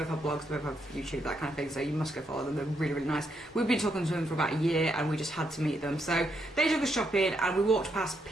have blogs, they both have YouTube, that kind of thing, so you must go follow them. They're really, really nice. We've been talking to them for about a year, and we just had to meet them. So they took us shopping, and we walked past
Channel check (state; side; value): normal; both; correlation 0.78